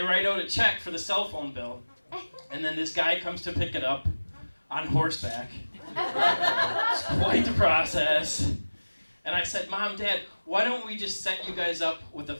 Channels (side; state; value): both; inverted; correlation -1.00